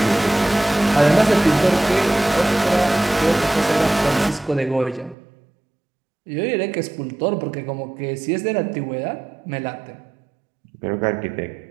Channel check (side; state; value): left; drops out; at 5.2 s